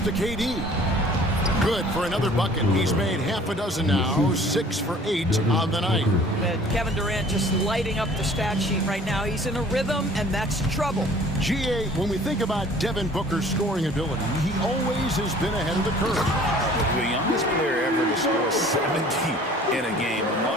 to KD. Good for another bucket. He's made half a dozen now, 6 for 8 on the night. Kevin Durant just lighting up the stat sheet right now. He's in a rhythm, and that's trouble. GA, when we think about Devin Booker's scoring ability, he always has been ahead of the curve. The youngest player ever to score 70 in a game,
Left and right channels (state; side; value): normal; both; correlation 0.51